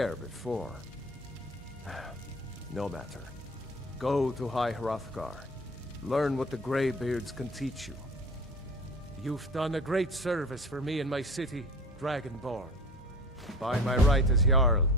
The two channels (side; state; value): both; normal; correlation 0.39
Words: before. No matter. Go to High Hrothgar. Learn what the Greybeards can teach you. You've done a great service for me and my city, Dragonborn. By my right as Jarl,